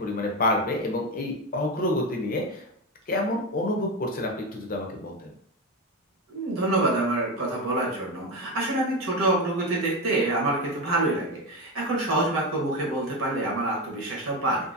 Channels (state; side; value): normal; both; correlation 0.16